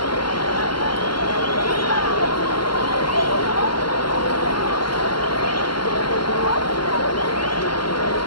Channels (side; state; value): right; late; 0.73 ms